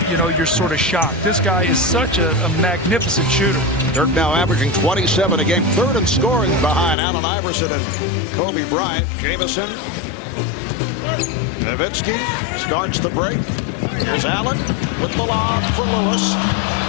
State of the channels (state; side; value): drops out; right; at 7.0 s